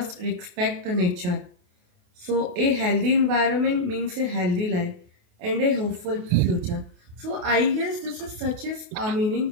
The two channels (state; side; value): late; left; 28 ms